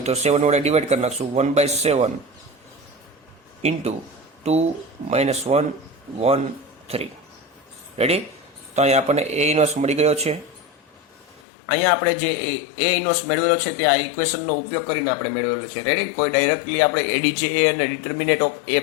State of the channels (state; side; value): drops out; right; at 11.4 s